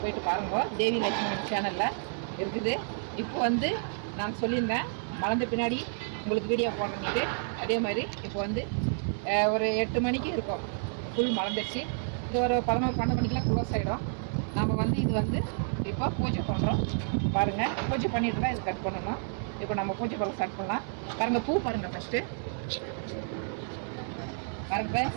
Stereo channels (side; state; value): left; silent; digital silence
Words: போயிட்டு பாருங்க. தேவி லட்சுமி சேனலில் இருக்குது. இப்போ நான் சொல்லியிருந்தேன் மலர்ந்த பின்னாடி உங்களுக்கு வீடியோ போடுறேன்ட்டு. அதே மாதிரி இப்போ ஒரு 8 மணிக்கு இருக்கும், ஃபுல் மலர்ந்துச்சு. இது ஒரு 11-12 மணிக்கெலாம் க்ளோஸ் ஆகிடும். நம்ம இது இப்போ பூஜை பண்ணுறோம். பாருங்கள், பூஜை பண்ணிட்டு தான் இது கட் பண்ணணும். இப்போ நம்ம பூஜை பண்ண ஸ்டார்ட் பண்ணலாம். பாருங்கள், பூ பாருங்கள். ஃபஸ்ட்டு பாருங்க,